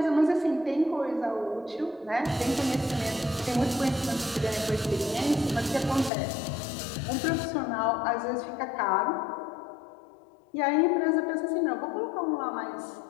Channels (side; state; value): right; drops out; at 6.1 s